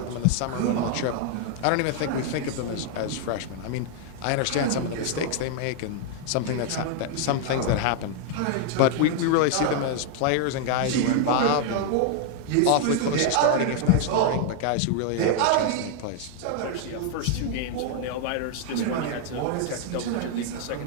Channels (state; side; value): different; both; correlation 0.00